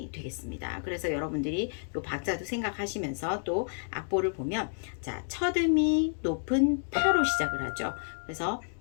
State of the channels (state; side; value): silent; right; digital silence